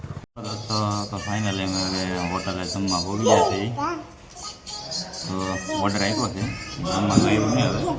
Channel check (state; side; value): identical; both; correlation 1.00